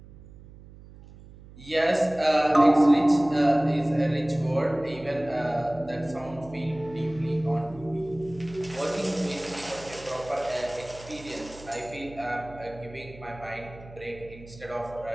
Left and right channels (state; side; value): noise; right; hum, 19 dB below the sound